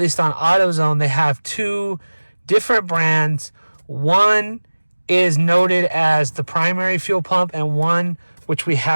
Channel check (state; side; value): inverted; both; correlation -1.00